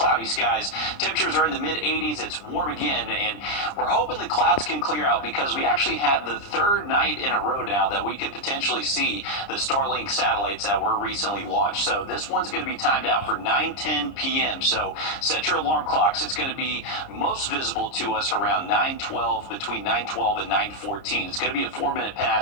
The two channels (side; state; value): right; late; 30 ms